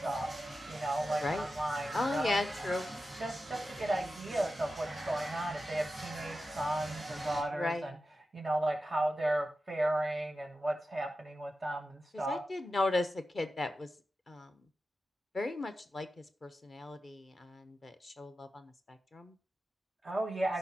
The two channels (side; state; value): both; normal; correlation 0.92